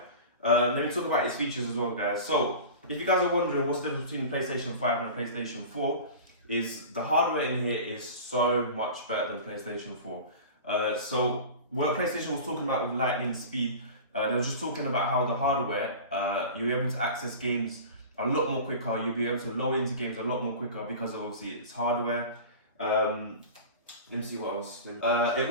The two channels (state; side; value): inverted; both; correlation -0.35